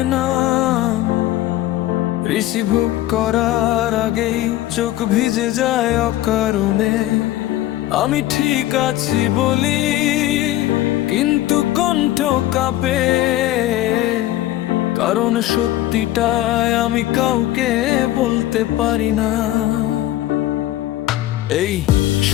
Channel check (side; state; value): right; quieter; 14.8 dB